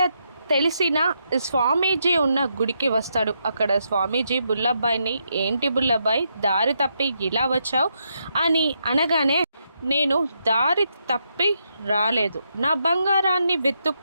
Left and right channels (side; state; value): both; inverted; correlation -0.80